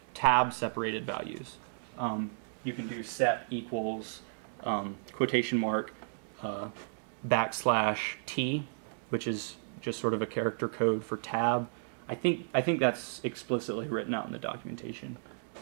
tab separated values, you can do sep equals quotation mark \t, which is just sort of a character code for tab. I think that's explicitly written out in the documentation,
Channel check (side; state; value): left; silent; 56 dB below the other